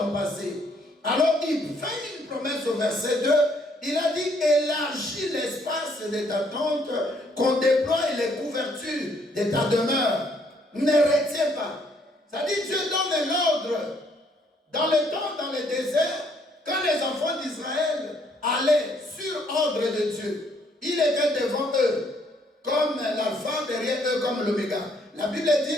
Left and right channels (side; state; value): both; normal; correlation 0.67